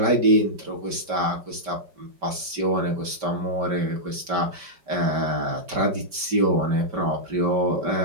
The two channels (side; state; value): left; late; 5.1 ms